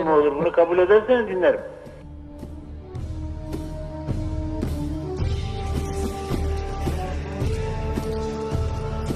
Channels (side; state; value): both; identical; correlation 1.00